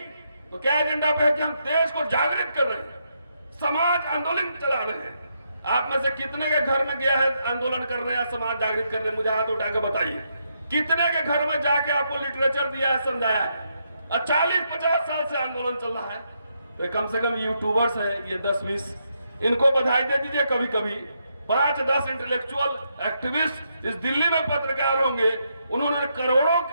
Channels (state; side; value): inverted; both; correlation -0.79